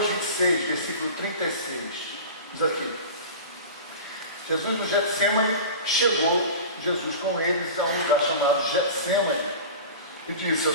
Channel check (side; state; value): both; inverted; correlation -0.33